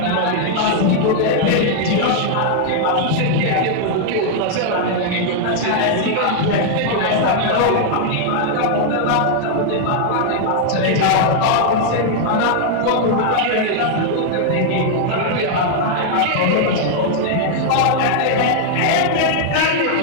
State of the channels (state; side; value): different; both; correlation 0.00